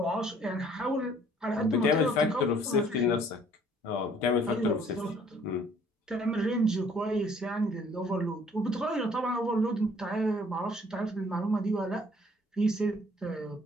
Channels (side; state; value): both; normal; correlation 0.58